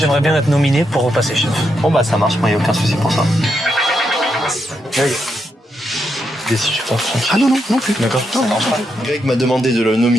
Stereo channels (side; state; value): both; normal; correlation 0.82